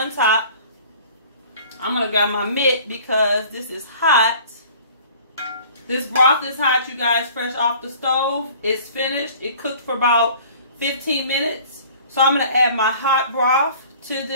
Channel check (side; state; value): both; inverted; correlation -0.49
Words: top. I'm gonna grab my mitt because this is hot. This broth is hot, you guys, fresh off the stove. It's finished. It cooked for about 15 minutes. So I'm gonna add my hot broth to